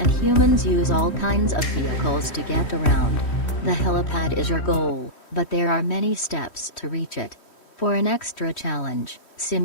humans use all kinds of vehicles to get around. The helipad is your goal, but there are many steps to reach it. For an extra challenge,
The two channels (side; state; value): right; late; 3.1 ms